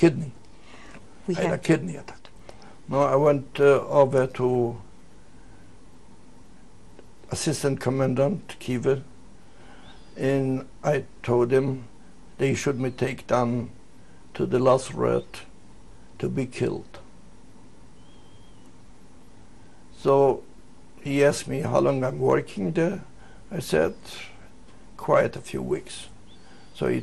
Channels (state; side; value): identical; both; correlation 1.00